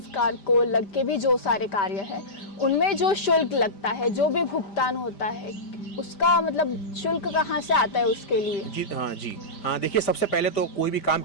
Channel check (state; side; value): late; right; 5.1 ms